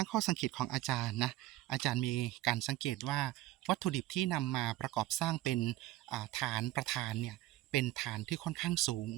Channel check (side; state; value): left; quieter; 15.6 dB